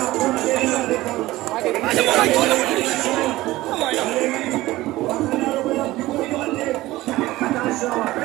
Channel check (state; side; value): quieter; left; 17.7 dB